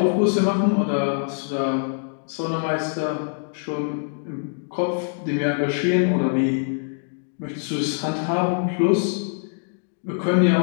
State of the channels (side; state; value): right; silent; digital silence